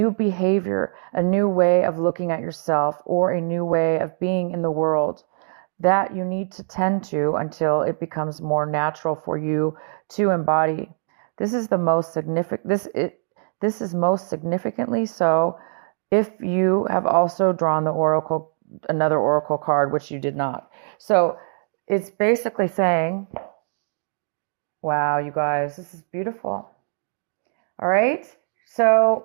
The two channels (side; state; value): left; silent; digital silence